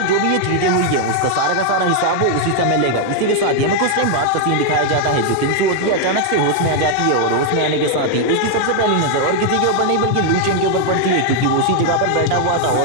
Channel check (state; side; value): different; both; correlation 0.00